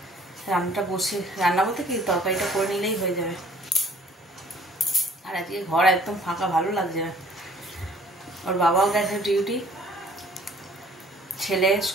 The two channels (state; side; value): normal; both; correlation 0.56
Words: রান্নাটা বসে, রান্না বলতে কি তরকারিটা করে নিলেই হয়ে যাবে। আর আজকে ঘর একদম ফাঁকা, ভালো লাগছে না। ওর বাবাও গেছে ডিউটি, ছেলে